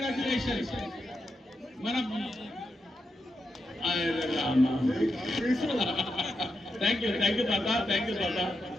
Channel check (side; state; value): both; normal; correlation 0.85